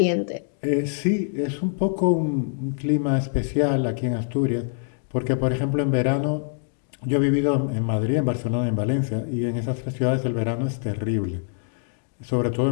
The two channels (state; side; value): silent; right; digital silence